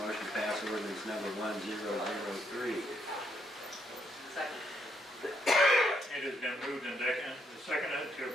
to pass ordinance number 1003. Second. It has been moved and seconded to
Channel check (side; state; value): both; normal; correlation 0.75